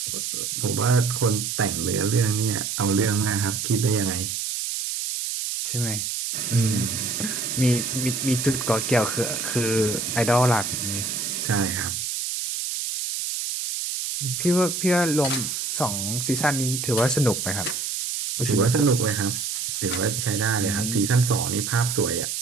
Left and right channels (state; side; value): noise; right; hiss, 3 dB below the sound